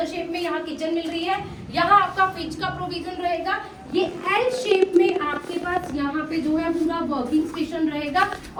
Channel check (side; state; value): both; identical; correlation 1.00